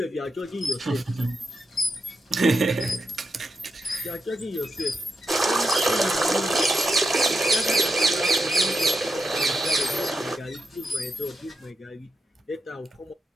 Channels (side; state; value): both; normal; correlation 0.85